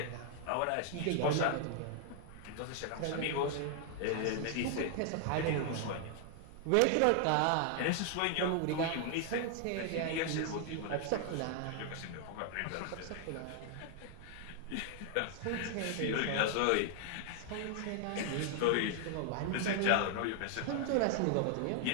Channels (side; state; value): both; different; correlation 0.00